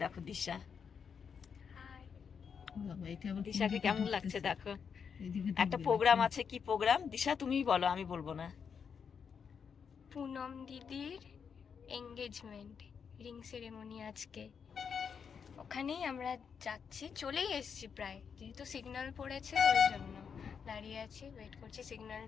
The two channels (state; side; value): quieter; right; 6.6 dB